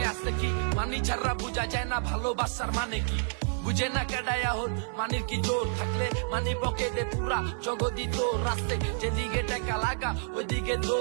আছে কি, মানি ছাড়া বুঝা যায় না ভালোবাসার মানে কি। বুঝে না কেডায় হল মানির কি জোর, থাকলে মানি পকেটে পুরা জগদি তোর। রাস্তে যেদিকে টাকা লাগা ওইদিকে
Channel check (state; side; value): silent; left; digital silence